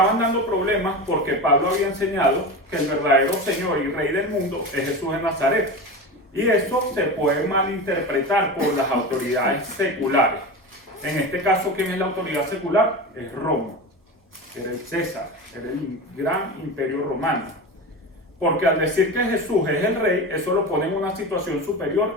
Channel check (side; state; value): both; normal; correlation 0.26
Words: dando problemas porque Pablo había enseñado que el verdadero Señor y Rey del mundo es Jesús de Nazaret. Y eso se puede malinterpretar por las autoridades seculares. En este caso, ¿quién es la autoridad secular? Es Roma. Era el César, era el gran imperio romano. Porque al decir que Jesús es el rey, eso lo pone en una situación